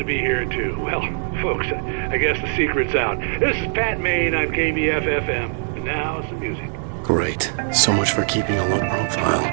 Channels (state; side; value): silent; left; 62 dB below the other